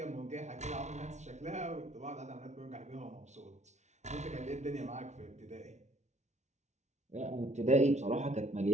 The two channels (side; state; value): left; late; 0.33 ms